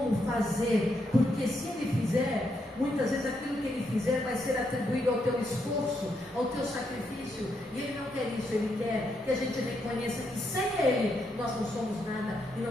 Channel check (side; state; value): both; normal; correlation 0.79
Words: fazer. Porque se Ele fizer, muitas vezes aquilo que Ele fizer vai ser atribuído ao teu esforço, ao teu sacrifício. E Ele não quer isso. Ele quer que a gente reconheça que sem Ele nós não somos nada e